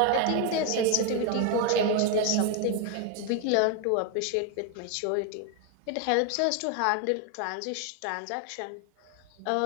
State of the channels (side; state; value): both; different; correlation 0.01